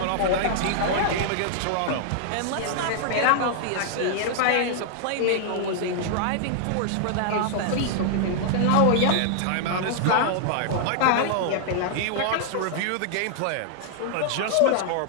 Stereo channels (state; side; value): different; both; correlation -0.01